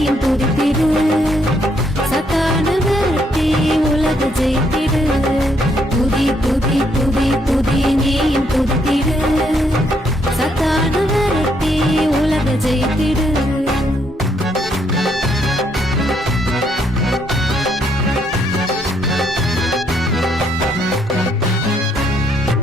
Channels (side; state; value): both; normal; correlation 0.72